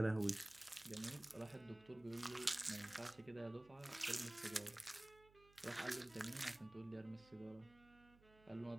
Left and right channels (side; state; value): right; noise; hum, 24 dB below the sound